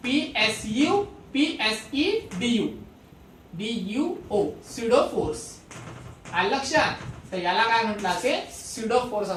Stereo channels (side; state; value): both; identical; correlation 1.00